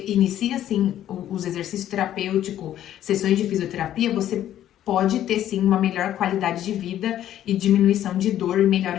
inicia, assim, os exercícios terapêuticos, sessões de fisioterapia, você pode ter, sim, uma melhor qualidade de vida e diminuição de dor e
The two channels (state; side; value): quieter; right; 11.8 dB